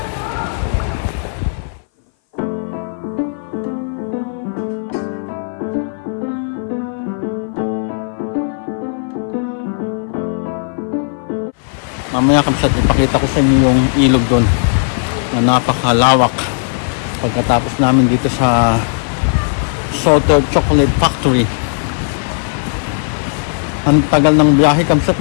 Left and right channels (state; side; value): silent; right; 60 dB below the other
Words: Mamaya kapsat ipakita ko sa inyo yung ilog doon na napakalawak. Pagkatapos namin dito sa Salted Chocolate Factory. Ang tagal ng biyahe kapsat,